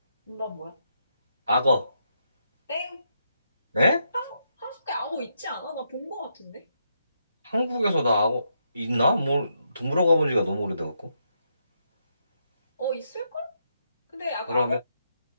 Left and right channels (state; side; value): inverted; both; correlation -0.80